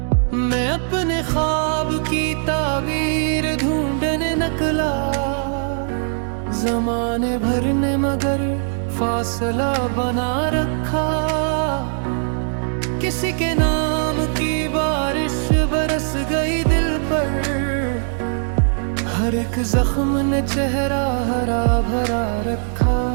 मैं अपने ख्वाब की ताबीर ढूंढने निकला, ज़माने भर ने मगर फासला बना रखा। किसी के नाम की बारिश बरस गई दिल पर, हर एक जख्म ने चेहरा हरा भरा रखा।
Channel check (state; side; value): silent; left; digital silence